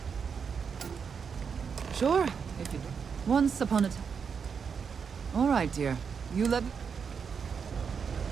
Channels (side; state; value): left; quieter; 6.4 dB